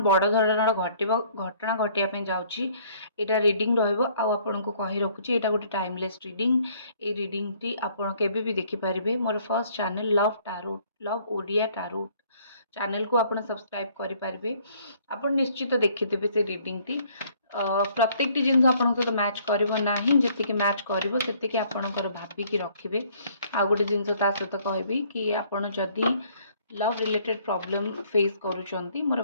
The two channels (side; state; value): both; inverted; correlation -0.61